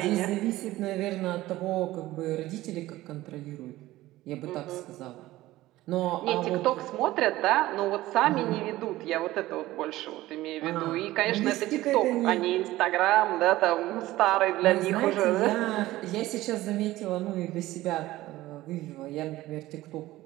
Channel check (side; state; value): left; quieter; 16.8 dB